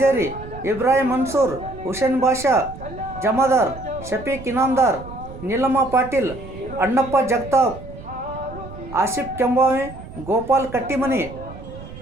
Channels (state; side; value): noise; right; rumble, 14 dB below the sound